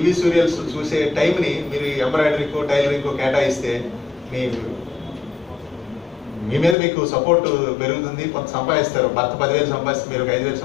సీరియల్స్ చూసే టైంని మీరు ఎంబ్రాయిడరీకో టైలరింగ్కో కేటాయిస్తే మీ మీద మీకు సపోర్ట్ పెరుగుతుంది. కొంత సంపాదిస్తారు. భర్త 10,000 సంపాదిస్తే మీరు 5,000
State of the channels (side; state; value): right; drops out; at 6.8 s